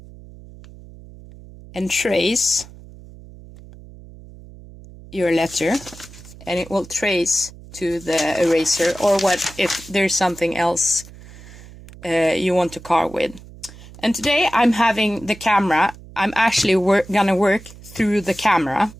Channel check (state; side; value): noise; right; hum, 19 dB below the sound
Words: and trace your letter, and it will trace to the eraser, or what if there's something else you want to carve with. And today I'm having the camera. I'm actually gonna work through the camera.